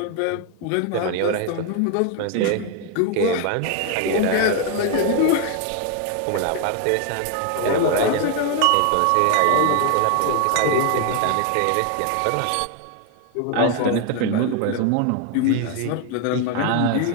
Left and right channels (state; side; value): different; both; correlation 0.01